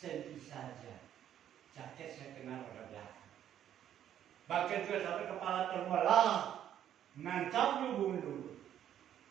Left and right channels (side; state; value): left; quieter; 10.5 dB